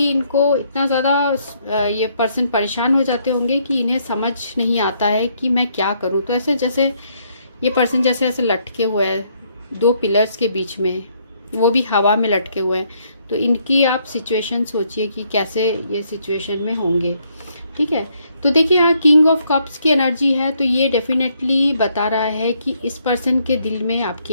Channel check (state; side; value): inverted; both; correlation -0.71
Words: इनको इतना ज़्यादा ये पर्सन परेशान हो जाते होंगे कि इन्हें समझ नहीं आता है कि मैं क्या करूँ। तो ऐसे जैसे ये पर्सन जैसे ऐसे लटके हुए हैं 2 पिलर्स के बीच में, वो भी हवा में लटके हुए हैं। तो इनकी आप सिचुएशन सोचिए कि कैसे ये सिचुएशन में होंगे। ठीक है, तो देखिए यहाँ किंग ऑफ कप्स की एनर्जी है, तो ये डेफिनेटली बता रहा है कि इस पर्सन के दिल में